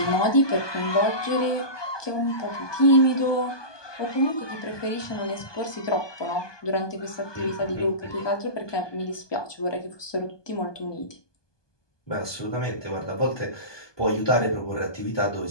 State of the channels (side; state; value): right; late; 1.2 ms